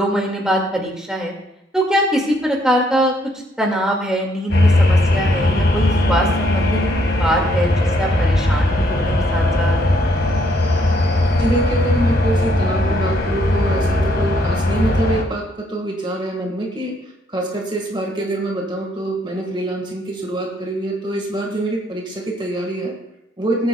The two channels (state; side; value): normal; both; correlation 0.70